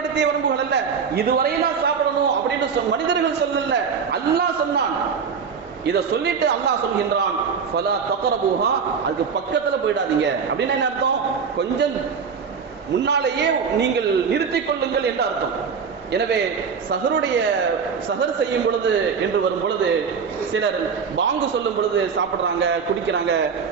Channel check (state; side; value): quieter; left; 6.1 dB